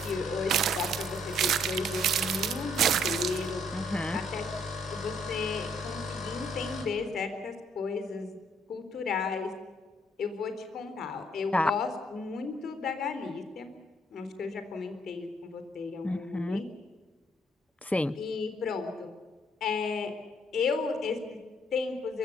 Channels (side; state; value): both; normal; correlation 0.67